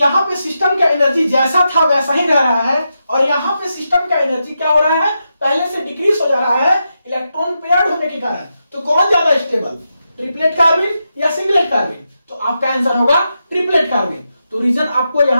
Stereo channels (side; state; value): both; inverted; correlation -0.86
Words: पे सिस्टम का एनर्जी जैसा था वैसा ही रह रहा है और यहां पे सिस्टम का एनर्जी क्या हो रहा है, पहले से डिक्रीज हो जा रहा है इलेक्ट्रॉन पेयर्ड होने के कारण। तो कौन ज्यादा स्टेबल, ट्रिपलेट कार्बन या सिंगलेट कार्बन? तो आपका आंसर होगा ट्रिपलेट कार्बन। तो रीजन आपको